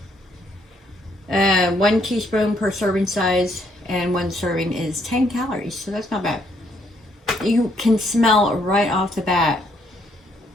1 teaspoon per serving size, and 1 serving is 10 calories, so that's not bad. You can smell right off the bat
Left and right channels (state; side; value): normal; both; correlation 0.71